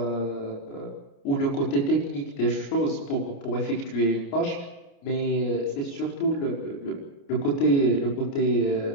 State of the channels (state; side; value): late; right; 29 ms